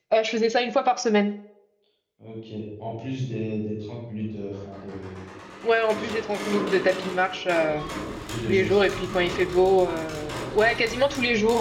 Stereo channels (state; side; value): identical; both; correlation 1.00